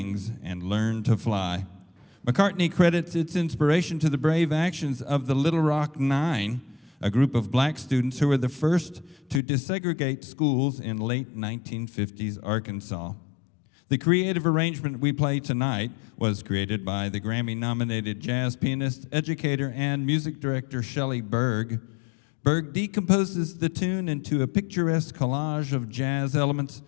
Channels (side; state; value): right; drops out; at 9.4 s